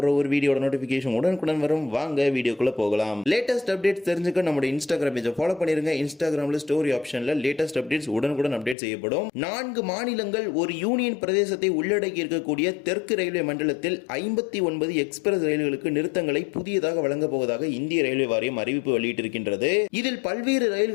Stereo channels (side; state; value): right; drops out; at 8.8 s